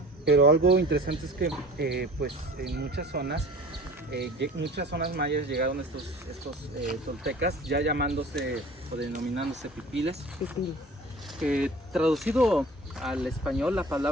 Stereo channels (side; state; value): both; normal; correlation 0.44